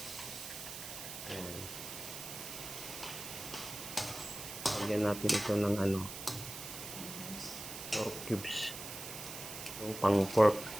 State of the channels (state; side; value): noise; right; hiss, 9 dB below the sound